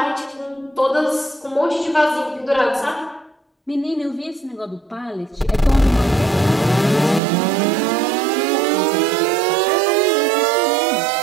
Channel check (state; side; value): drops out; left; at 7.2 s